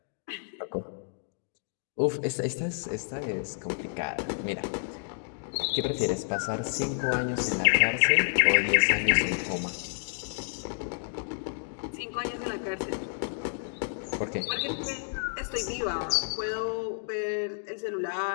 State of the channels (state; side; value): silent; right; digital silence